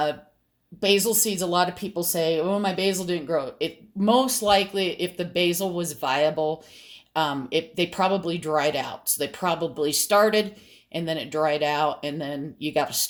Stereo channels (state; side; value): identical; both; correlation 1.00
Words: seeds, a lot of people say, oh, my basil didn't grow. It most likely, if the basil was viable, they probably dried out. So they probably started and then it dried out, and then you got to